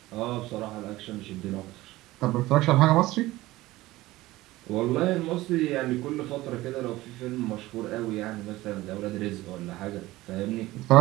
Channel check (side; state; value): left; quieter; 18.0 dB